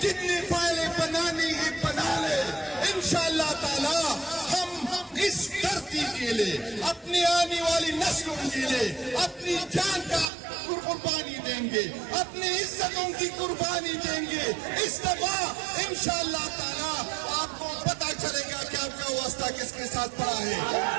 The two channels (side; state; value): left; drops out; at 10.2 s